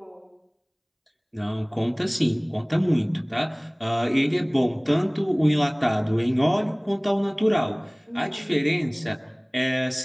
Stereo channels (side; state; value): both; identical; correlation 1.00